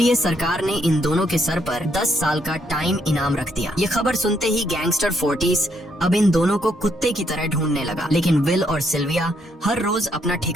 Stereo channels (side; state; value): both; normal; correlation 0.74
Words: सरकार ने इन दोनों के सर पर 10 साल का टाइम इनाम रख दिया। ये खबर सुनते ही गैंगस्टर फोर्टिस अब इन दोनों को कुत्ते की तरह ढूंढने लगा। लेकिन विल और सिल्विया हर रोज अपना